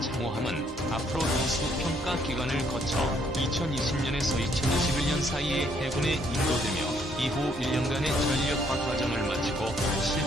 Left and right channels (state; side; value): normal; both; correlation 0.68